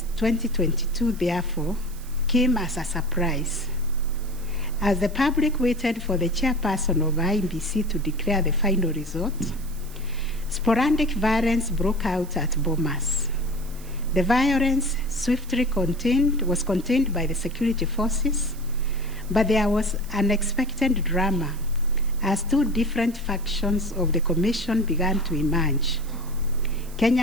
2022, therefore, came as a surprise. As the public waited for the chairperson of IEBC to declare the final result, sporadic violence broke out at Bomas. The violence swiftly was contained by the security forces, but there was unexpected drama as 2 different factions of the Commission began to emerge.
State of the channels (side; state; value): right; noise; hiss, 20 dB below the sound